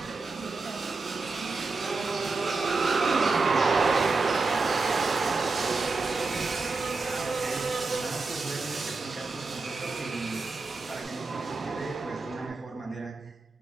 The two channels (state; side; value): quieter; left; 3.9 dB